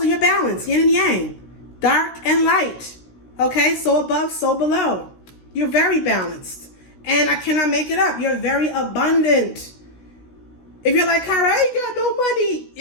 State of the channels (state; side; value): late; right; 16 ms